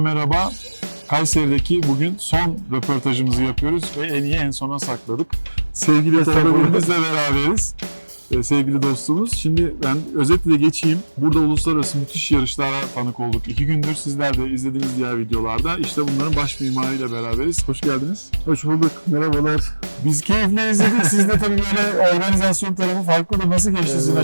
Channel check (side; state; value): both; inverted; correlation -1.00